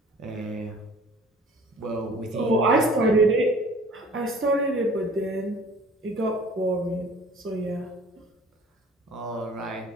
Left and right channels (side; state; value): both; normal; correlation 0.49